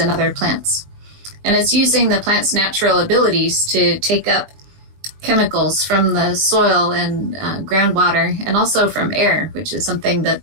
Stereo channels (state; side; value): late; left; 20 ms